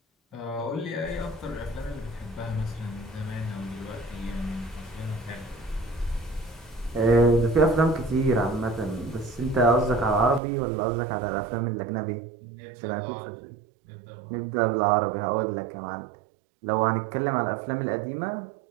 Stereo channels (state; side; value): drops out; left; at 10.4 s